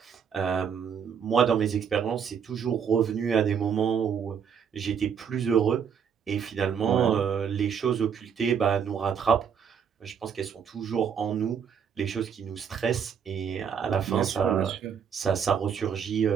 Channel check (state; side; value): quieter; left; 7.4 dB